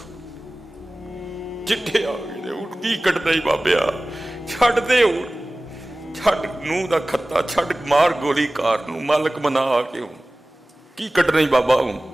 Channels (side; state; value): both; normal; correlation 0.98